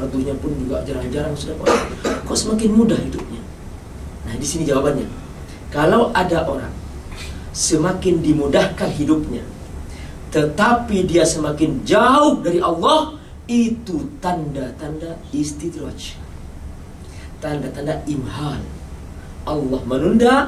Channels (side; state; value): both; identical; correlation 1.00